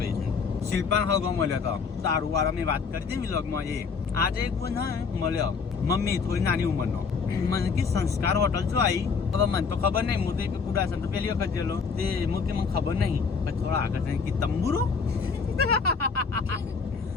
છે. શિલ્પાન હગો મળ્યો તો સારું વાળા મેં વાત કરી હતી વ્લોગમાં. એ આજે એક બોન હે મળ્યો મમ્મી થોડી નાની ઉંમરનો. મને કે સંસ્કાર હોટલ શું આવી. હવે મને તો ખબર નહીં. હું તો કુડાસન તો પહેલી વખત ગયેલો તે મને ખબર નહીં. પછી થોડા આગળ જઈને કે તંબુરો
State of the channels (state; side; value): quieter; right; 5.3 dB